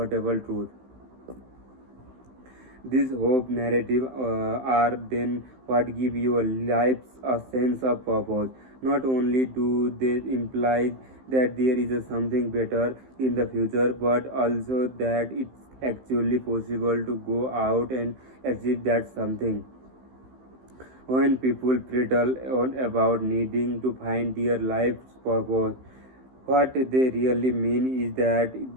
truth. These hope narrative are then what give your lives a sense of purpose. Not only do they imply that there is a something better in the future, but also that it's actually possible to go out and achieve that something. When people prattle on about needing to find their life's purpose, what they really mean is that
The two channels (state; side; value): late; left; 15 ms